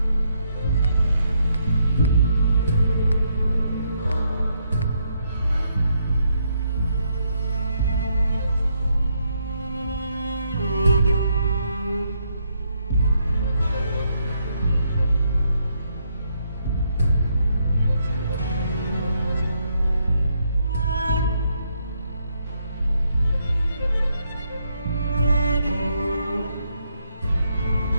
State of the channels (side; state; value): both; inverted; correlation -0.75